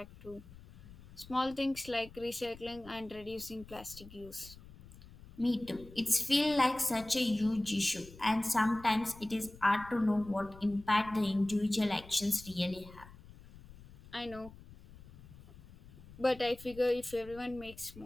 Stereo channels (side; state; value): left; noise; rumble, 19 dB below the sound